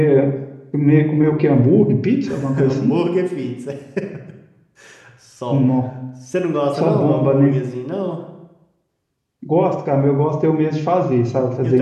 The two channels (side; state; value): both; identical; correlation 1.00